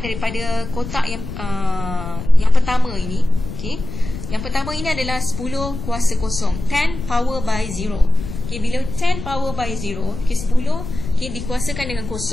kotak yang pertama ini, okay, yang pertama ini adalah 10 kuasa kosong, 10 power by 0. Okay, bila 10 power by 0, okay, 10 okay, dikuasakan dengan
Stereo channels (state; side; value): noise; left; rumble, 9 dB below the sound